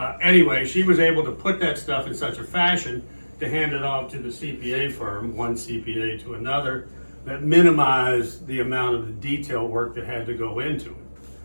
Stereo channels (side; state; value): both; inverted; correlation -1.00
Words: Anyway, she was able to put that stuff in such a fashion to hand it off to the CPA firm, one CPA to another, that minimized the amount of the detail work that had to go into it,